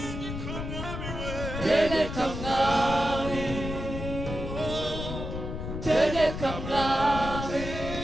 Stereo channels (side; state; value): left; noise; rumble, 6 dB below the sound